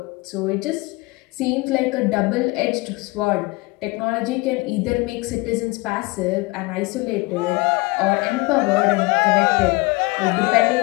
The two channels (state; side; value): quieter; right; 24.5 dB